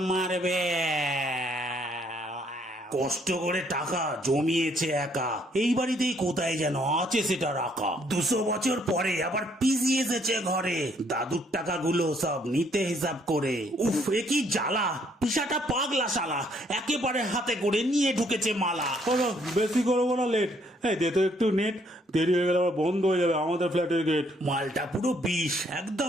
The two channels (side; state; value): both; normal; correlation 0.67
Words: মারবে। কষ্ট করে টাকা জমিয়েছে একা, এই বাড়িতেই কোথায় যেন আছে সেটা রাখা। 200 বছর পরে আবার পিসি এসেছে ঘরে, দাদুর টাকাগুলো সব নিতে হিসাব করে। উফ, এ কি জ্বালা, পিসাটা পাগলা শালা, একেবারে হাতে করে নিয়ে ঢুকেছে মালা। বলো বেশি করবো না লেট, এই দে তো একটু নেট, দেরি হয়ে গেলে আবার বন্ধ হয়ে যাবে আমাদের ফ্ল্যাটের গেট। মালটা পুরো বিষ,